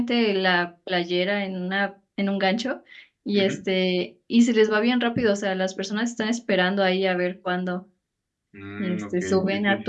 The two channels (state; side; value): identical; both; correlation 1.00